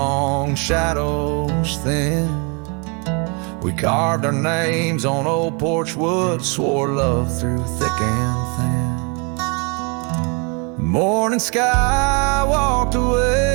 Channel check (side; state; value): left; quieter; 33.6 dB